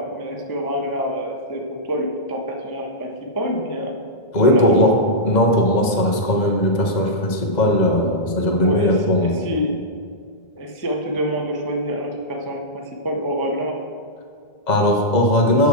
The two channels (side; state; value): right; late; 2.0 ms